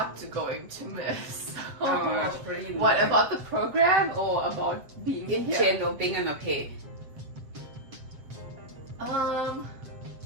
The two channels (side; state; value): left; late; 7.6 ms